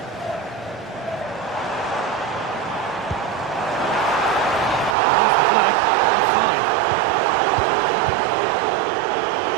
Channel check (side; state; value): left; drops out; at 5.0 s